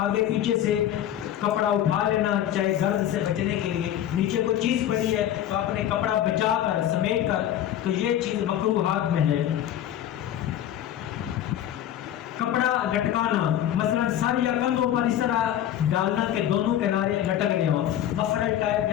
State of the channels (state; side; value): quieter; right; 11.3 dB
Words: پیچھے سے کپڑا اٹھا لینا، چاہے گرد سے بچنے کے لیے. نیچے کوئی چیز پڑی ہے تو آپ نے کپڑا بچا کر سمیٹ کر، تو یہ چیز مکروہات میں ہے. کپڑا لٹکانا، مثلا سر یا کندھوں پر اس طرح ڈالنا کہ دونوں کنارے لٹک رہے ہوں. مفرل ٹائپ